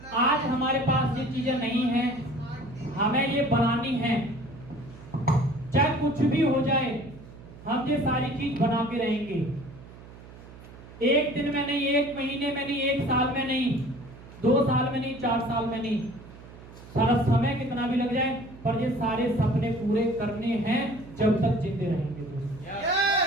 आज हमारे पास ये चीजें नहीं है, हमें ये बनानी है, चाहे कुछ भी हो जाए हम ये सारी चीज बना के रहेंगे। एक दिन में नहीं, एक महीने में नहीं, एक साल में नहीं, 2 साल में नहीं, 4 साल में नहीं, सारा समय कितना भी लग जाए, पर ये सारे सपने पूरे करने हैं जब तक जिंदे रहेंगे दोस्तों।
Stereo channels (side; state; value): right; noise; hum, 18 dB below the sound